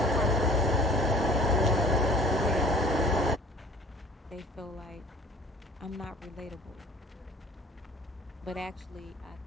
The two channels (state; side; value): normal; both; correlation 0.47